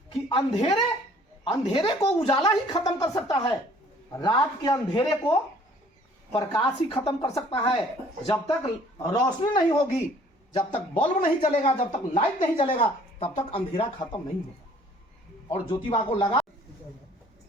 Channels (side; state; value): both; normal; correlation 0.56